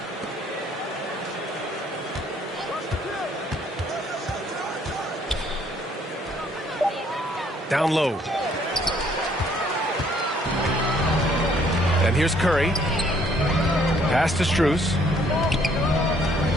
Down low. And here's Curry. Pass to Strus.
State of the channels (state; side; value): normal; both; correlation 0.64